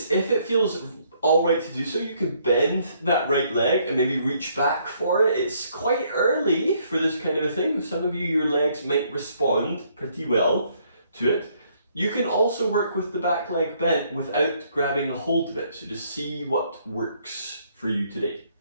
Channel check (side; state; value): both; inverted; correlation -0.68